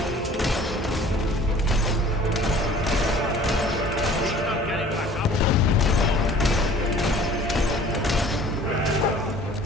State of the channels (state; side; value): normal; both; correlation 0.49